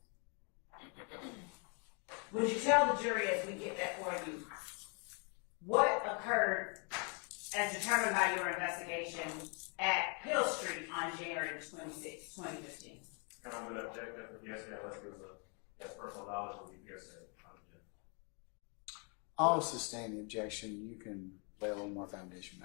Would you tell the jury, as we get that for you, what occurred as determined by your investigation at Hill Street on January 26, 2015? And I'm going to object that the hearsay, unless it was that's personal knowledge will be hearsay. I'll sustain the objection. You can lay a little more foundation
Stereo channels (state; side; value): quieter; right; 37.0 dB